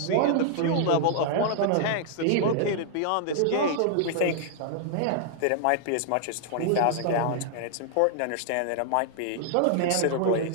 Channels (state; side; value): different; both; correlation -0.01